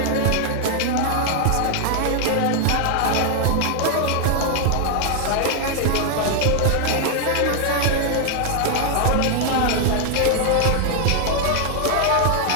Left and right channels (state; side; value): different; both; correlation 0.00